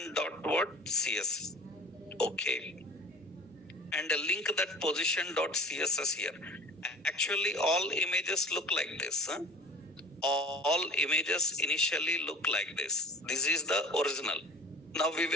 dot what? CS. Okay. And link that position dot CSS here. Actually, all images look like this. All images initially look like this. This is the original. Now we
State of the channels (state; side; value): normal; both; correlation 0.42